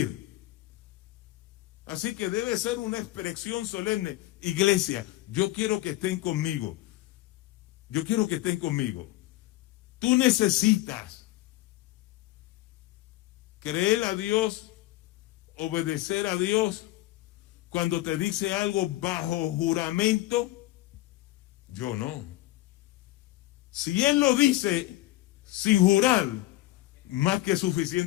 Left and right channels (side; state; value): right; quieter; 17.3 dB